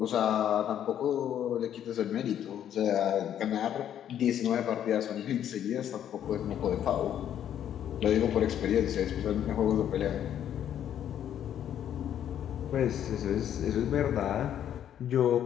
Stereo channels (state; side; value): quieter; right; 10.1 dB